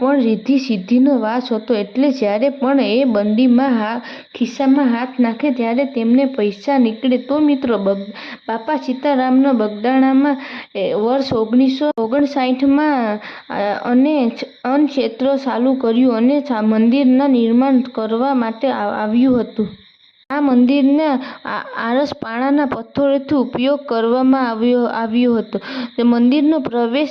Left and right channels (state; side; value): identical; both; correlation 1.00